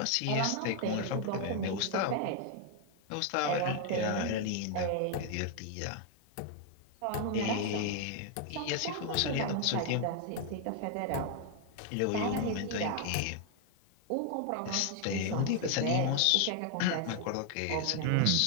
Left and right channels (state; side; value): different; both; correlation 0.00